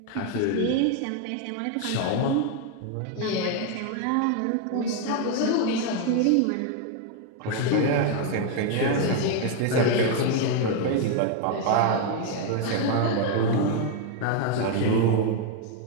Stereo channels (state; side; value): different; both; correlation 0.01